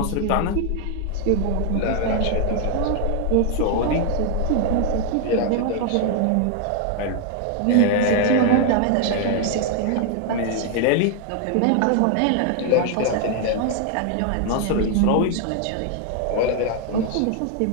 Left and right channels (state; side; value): different; both; correlation 0.00